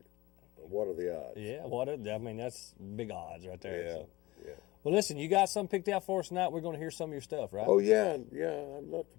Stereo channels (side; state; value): right; quieter; 19.8 dB